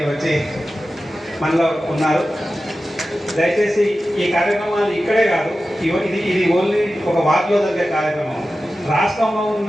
వచ్చి మనలో ఉన్నారు. దయచేసి ఈ కార్యక్రమాలు ఇక్కడే కాదు, ఇది ఓన్లీ ఒక వార్డులో జరిగే కార్యక్రమం. రాష్ట్రంలో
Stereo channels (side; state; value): both; normal; correlation 0.94